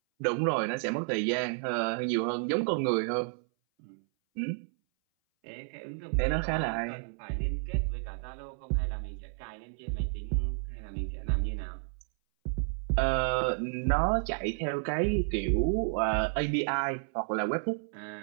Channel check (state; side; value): silent; left; 57 dB below the other